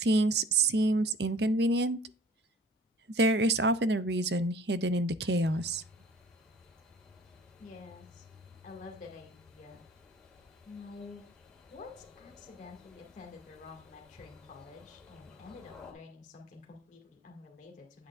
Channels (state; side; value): normal; both; correlation 0.51